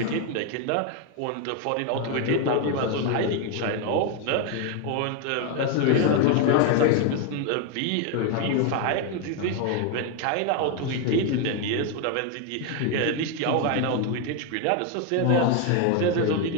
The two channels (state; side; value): different; both; correlation 0.01